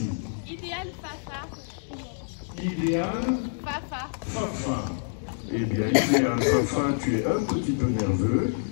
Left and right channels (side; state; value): right; silent; 60 dB below the other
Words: Idéal Fafa. Idéal Fafa. Fafa. Eh bien, Idéal Fafa, tu es un petit peu nerveux,